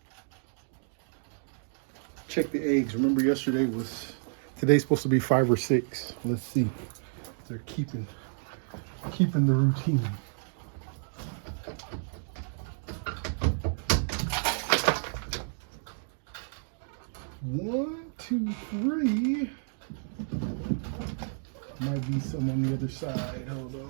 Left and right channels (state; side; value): silent; left; digital silence